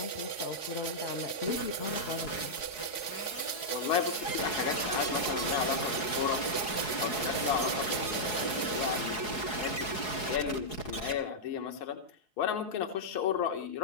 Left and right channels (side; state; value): right; late; 4.7 ms